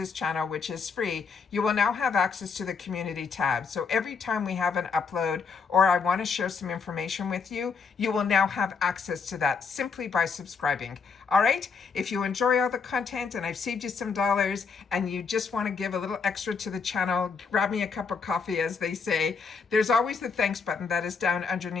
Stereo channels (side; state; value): right; quieter; 5.4 dB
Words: channel, which is free, you will now have access to the community tab. So every time we have an upload or I want to share some information with you, you will now have access to that simply by subscribing. All right, if you enjoy all the content and I've saved you some dollars and you just want to give a little extra to the channel, grab me a cup of coffee, as they say. There's always the thanks button that is down